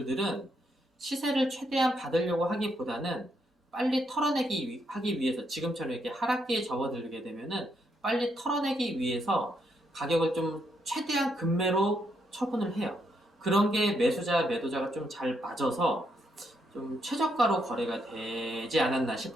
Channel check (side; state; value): both; normal; correlation 0.76